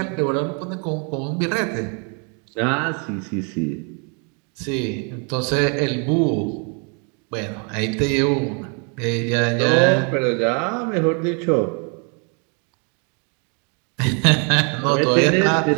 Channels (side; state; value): left; quieter; 37.0 dB